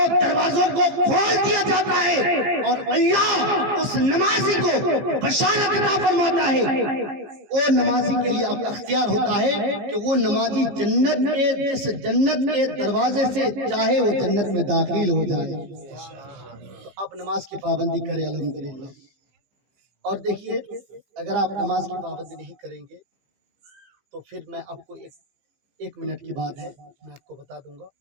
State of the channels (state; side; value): late; left; 15 ms